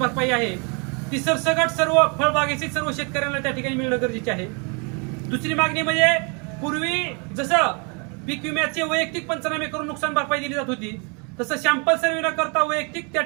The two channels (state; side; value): quieter; left; 34.6 dB